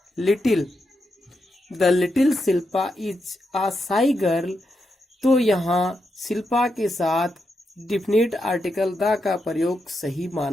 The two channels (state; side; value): normal; both; correlation 0.84